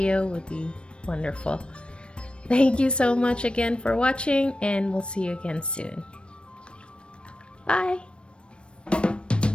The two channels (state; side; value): late; right; 0.057 ms